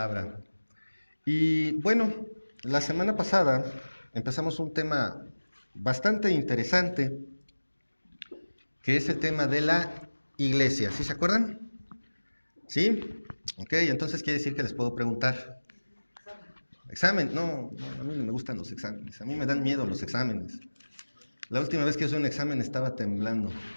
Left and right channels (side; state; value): both; inverted; correlation -1.00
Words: Y bueno, la semana pasada empezamos un tema bastante interesante, que es el tema de la iglesia. ¿Sí se acuerdan? ¿Sí? Ok, entonces quiere decir que les puedo preguntar. Examen, no, a mí no me gustan los exámenes, a mí me dan miedo los exámenes. La última vez que hice un examen estaba temblando.